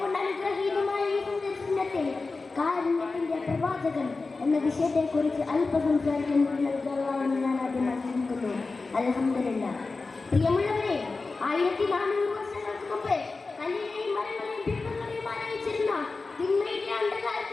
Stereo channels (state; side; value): quieter; right; 3.9 dB